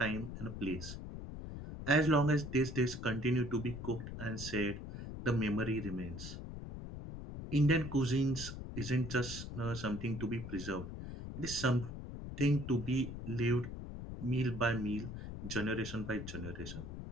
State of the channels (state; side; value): noise; left; rumble, 8 dB below the sound